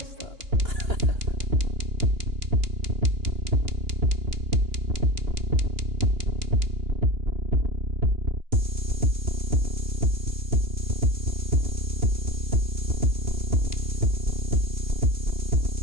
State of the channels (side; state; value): left; late; 2.9 ms